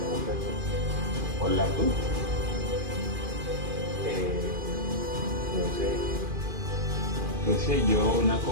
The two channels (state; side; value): late; left; 2.4 ms